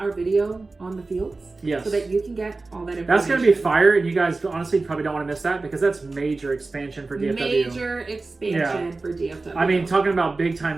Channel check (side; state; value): left; quieter; 3.6 dB